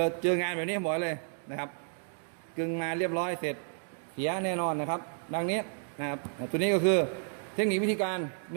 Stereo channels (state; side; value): silent; left; 57 dB below the other